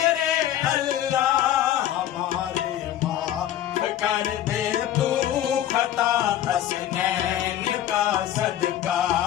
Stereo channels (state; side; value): quieter; right; 12.0 dB